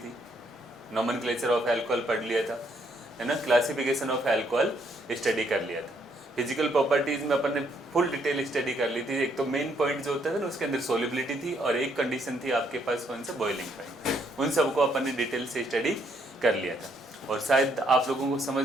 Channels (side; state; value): both; normal; correlation 0.71